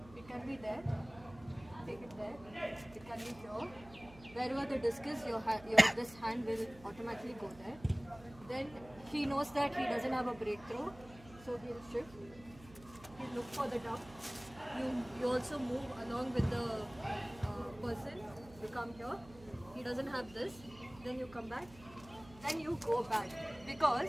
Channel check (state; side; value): noise; right; hum, 20 dB below the sound